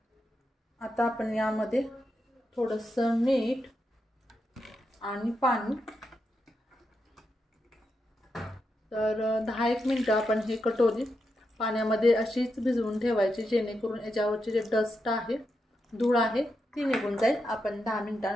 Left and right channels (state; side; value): normal; both; correlation 0.85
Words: आता आपण यामध्ये थोडंसं मीठ आणि पाणी, तर 10-1 मिनिट आपण हे कटोरी पाण्यामध्ये अशीच भिजवून ठेवायची, जेणेकरून याच्यावरचे जे डस्ट आहे, धूळ आहे, ती निघून जाईल। आपण 10